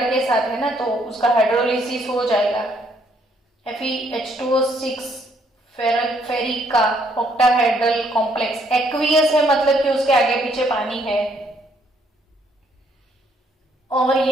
के साथ है ना, तो उसका हाइड्रोलिसिस हो जाएगा। FeH2O6 फेरिक का ऑक्टाहेड्रल कॉम्प्लेक्स एक्वियस है, मतलब कि उसके आगे पीछे पानी है, और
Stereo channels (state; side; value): normal; both; correlation 0.69